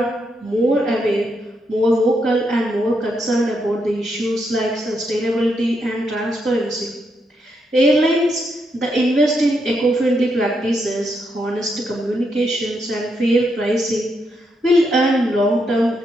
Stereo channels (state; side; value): normal; both; correlation 0.80